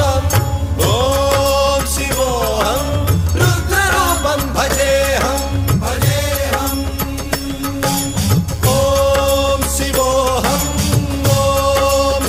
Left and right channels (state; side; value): identical; both; correlation 1.00